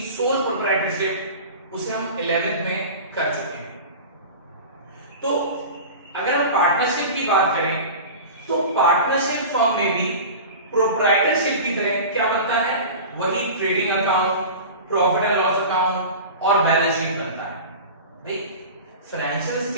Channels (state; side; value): inverted; both; correlation -0.33